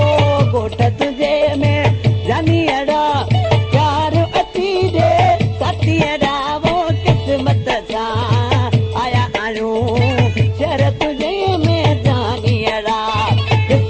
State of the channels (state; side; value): identical; both; correlation 1.00